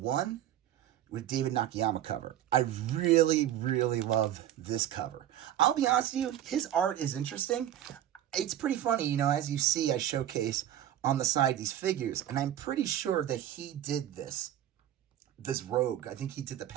with David Nakayama cover. I really, really love this cover. I'll be honest with you, his art is interesting. It's pretty funny, you know, as you see, I showcase on the side these figures, and I'm pretty sure that he did this Rogue. I think he did the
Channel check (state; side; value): quieter; left; 11.8 dB